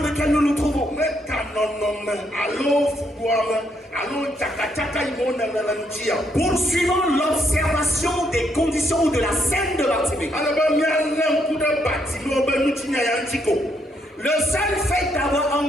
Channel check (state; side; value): normal; both; correlation 0.74